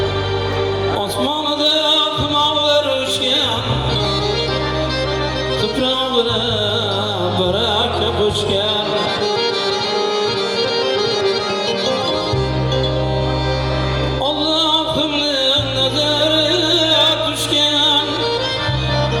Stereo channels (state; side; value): identical; both; correlation 1.00